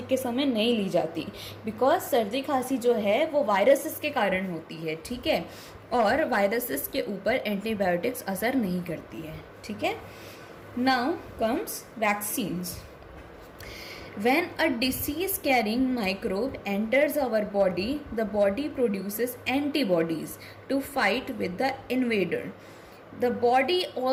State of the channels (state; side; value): identical; both; correlation 1.00